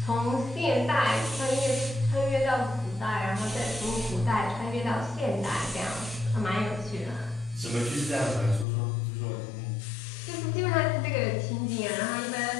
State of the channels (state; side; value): drops out; right; at 8.7 s